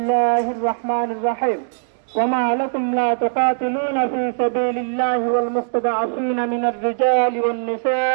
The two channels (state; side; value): silent; left; digital silence